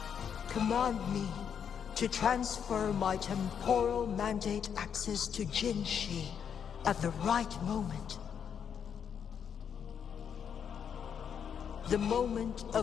Command me to transfer my temporal mandate access to Jinshi at the right moment. The moment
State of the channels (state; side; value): quieter; right; 7.7 dB